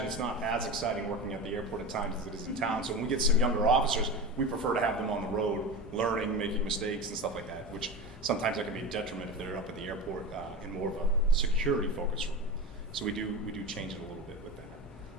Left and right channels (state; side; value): normal; both; correlation 0.26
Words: it's not as exciting working at the airport at times as it is in town. So when we get some younger officers, we prefer to have them on the road, learning, making mistakes and stuff like that, which sometimes that can be a detriment if they're up at the airport in more of a security focus role. So we do change it a little bit with that.